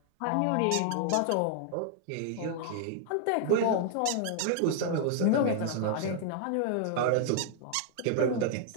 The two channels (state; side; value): different; both; correlation 0.00